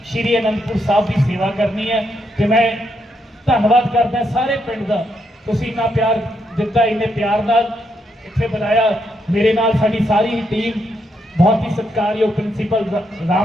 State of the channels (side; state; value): both; normal; correlation 0.79